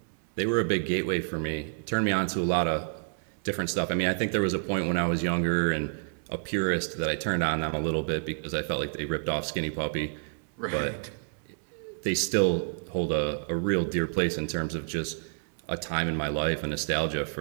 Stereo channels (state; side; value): silent; left; 59 dB below the other